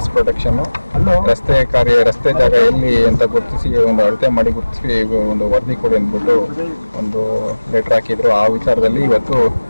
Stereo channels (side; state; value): both; inverted; correlation -1.00